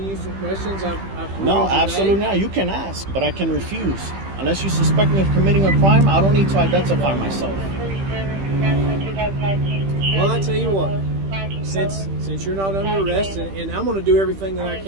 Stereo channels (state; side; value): late; left; 15 ms